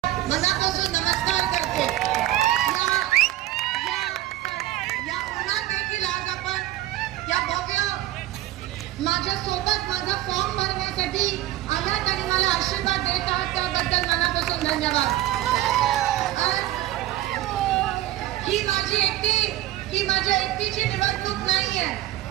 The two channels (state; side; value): quieter; left; 14.9 dB